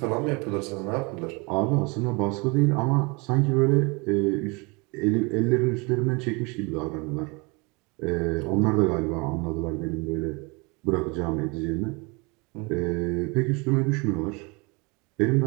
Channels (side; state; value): left; quieter; 28.7 dB